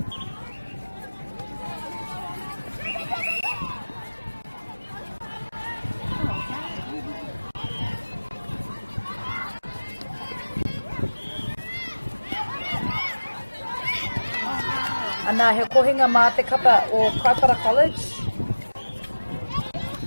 Ana he kohinga mā te kapa o Kaipara College.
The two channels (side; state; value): both; inverted; correlation -1.00